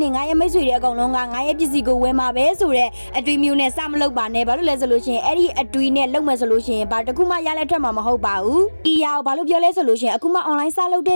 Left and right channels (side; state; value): both; inverted; correlation -1.00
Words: တွေငါရဲ့မိတ်ဆွေတွေအကုန်လုံးကငါရဲ့ပစ္စည်းကိုဝယ်မှာပဲဆိုတဲ့အတွေးမျိုးနဲ့စမလုပ်ပါနဲ့ဘာလို့လဲဆိုလို့ရှိရင်အဲ့ဒီအတွေးနဲ့လုပ်မယ်ဆိုလို့ရှိရင်ဘာတခုမှရလက်ထွက်မှာမဟုတ်ပါဘူးဒီရအောင်ဘာလို့ပြောလဲဆိုလို့ရှိရင်အခုမှ online စလုပ်တ